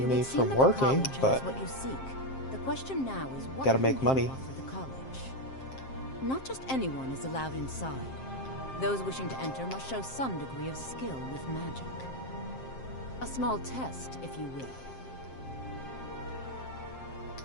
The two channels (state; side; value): late; right; 7.6 ms